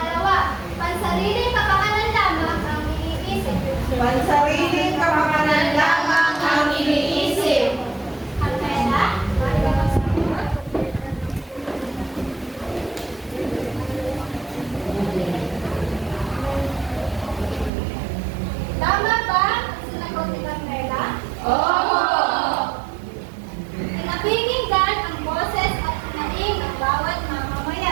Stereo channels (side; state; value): left; drops out; at 17.7 s